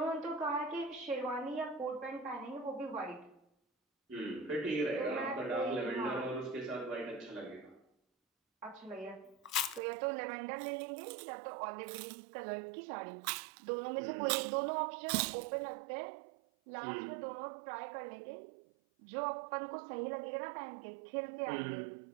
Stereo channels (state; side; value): drops out; left; at 9.8 s